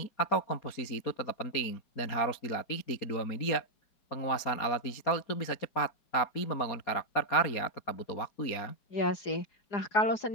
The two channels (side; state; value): right; late; 4.3 ms